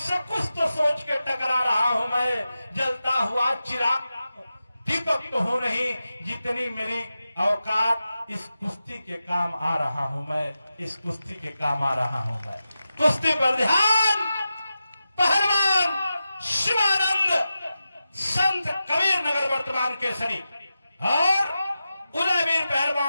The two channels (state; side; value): inverted; both; correlation -0.91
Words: कुछ तो सोच के टकरा रहा हूं मैं। जलता हुआ चिराग दीपक तो हो नहीं, जितनी मेरी औकात इस कुश्ती के काम आ रहा हूं मैं। इस कुश्ती के काम आ रहा हूं मैं। कुश्ती पर ध्यान। पहलवान शिवानंद संत कबीर नगर वर्तमान केसरी और उदयवीर